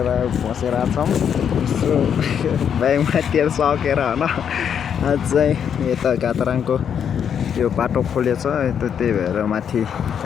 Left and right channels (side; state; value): right; quieter; 8.1 dB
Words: बसेर छौँ ब्यागमा तेल सकेर होइन आज चाहिँ यता घातराङको यो बाटो खोलेछ त्यही भएर माथि